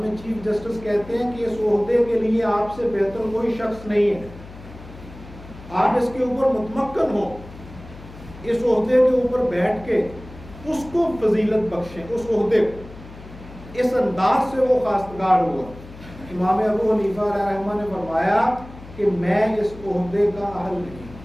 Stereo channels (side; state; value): left; noise; hum, 17 dB below the sound